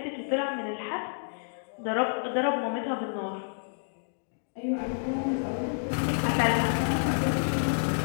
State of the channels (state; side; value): silent; right; digital silence